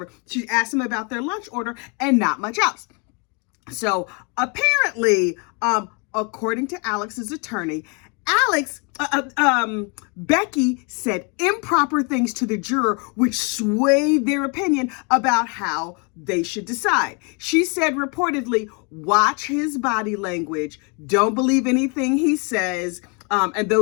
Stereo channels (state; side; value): quieter; right; 33.6 dB